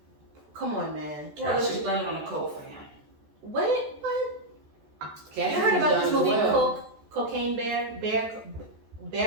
come on, man. Well, let's just blame it on the coke for him. What? You Cassie heard was about done this as movie, well. Cocaine Bear? Bear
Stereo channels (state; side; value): late; left; 14 ms